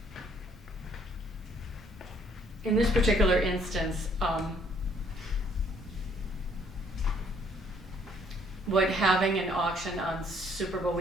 In this particular instance, would having an auction on Super Bowl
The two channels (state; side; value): normal; both; correlation 0.64